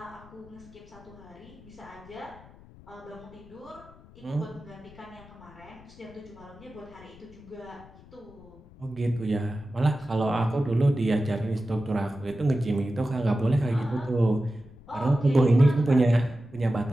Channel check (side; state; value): left; noise; rumble, 22 dB below the sound